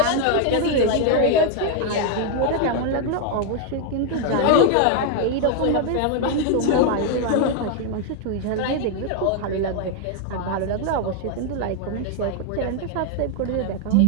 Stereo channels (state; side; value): different; both; correlation 0.00